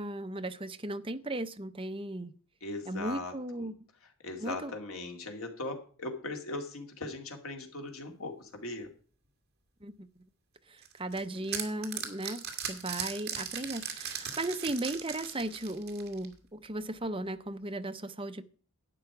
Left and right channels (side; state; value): both; normal; correlation 0.38